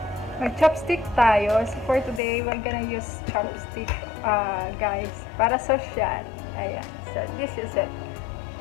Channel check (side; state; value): right; drops out; at 2.2 s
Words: mag-chopstick tayo. So, for today, we're gonna use chopstick, guys, para social. Ayan. So, this is it.